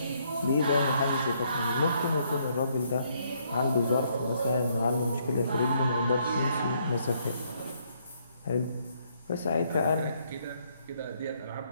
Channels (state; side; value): inverted; both; correlation -0.71